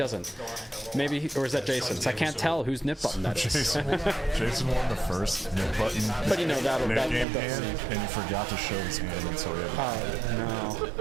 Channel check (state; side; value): drops out; left; at 7.2 s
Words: Maybe, or is that Jason's? I can't tell whose nip button that is. Jason won the first nip button. But that'll game hand, and you forgot to show his hand, and so he had to no.